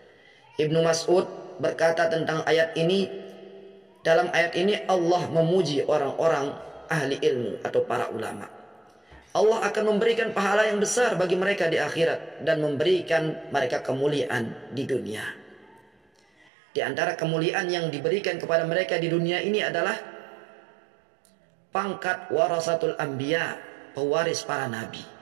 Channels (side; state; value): left; drops out; at 16.4 s